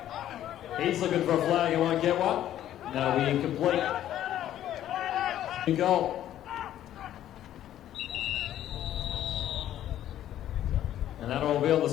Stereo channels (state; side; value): quieter; right; 12.0 dB